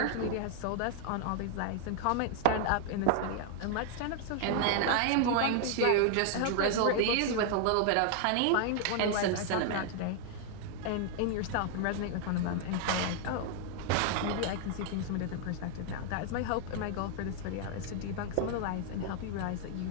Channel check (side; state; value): both; different; correlation 0.00